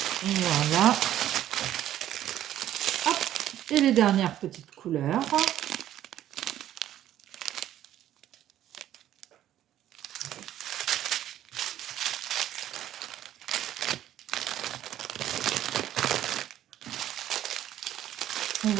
Voilà. Hop. Et les dernières petites couleurs. On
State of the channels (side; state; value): left; quieter; 12.1 dB